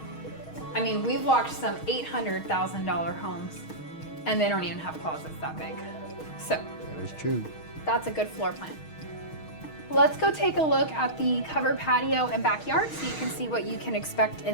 I mean, we've walked some $800,000 homes and they don't even have closets that big. So That is true. that's a good floor plan. Let's go take a look at the covered patio and backyard so you can see what you can expect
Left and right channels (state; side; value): late; right; 6.4 ms